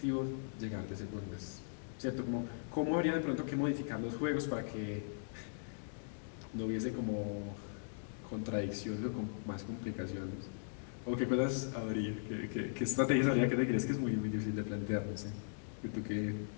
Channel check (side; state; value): right; silent; digital silence